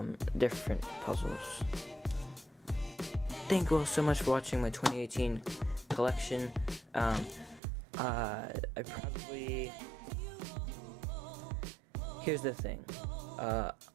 different puzzles. Thank you all so much for watching my 2018 collection. Here's the thing.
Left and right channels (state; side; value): drops out; left; at 7.6 s